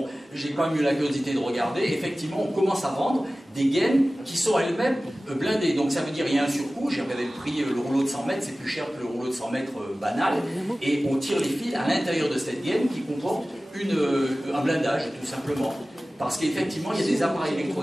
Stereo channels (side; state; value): both; normal; correlation 0.97